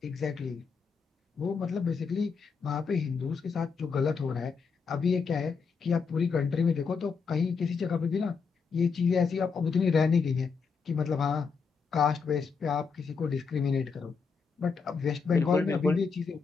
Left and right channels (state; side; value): quieter; right; 5.4 dB